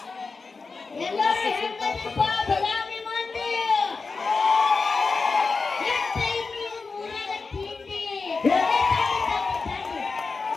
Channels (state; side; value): quieter; right; 4.4 dB